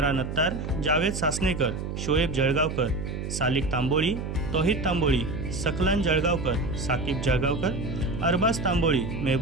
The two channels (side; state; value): right; noise; hum, 5 dB below the sound